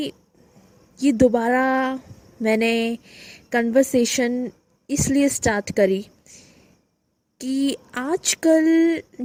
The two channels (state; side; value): identical; both; correlation 1.00